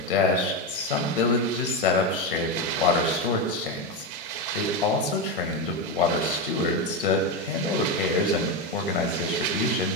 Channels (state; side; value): normal; both; correlation 0.13